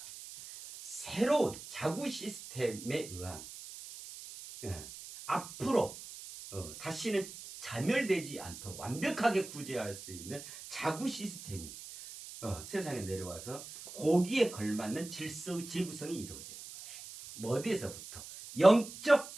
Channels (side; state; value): right; noise; hiss, 13 dB below the sound